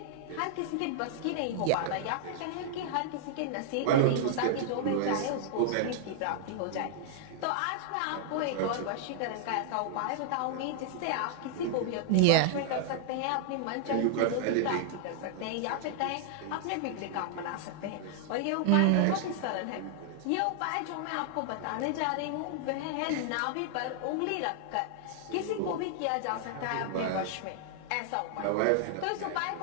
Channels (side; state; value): both; different; correlation -0.01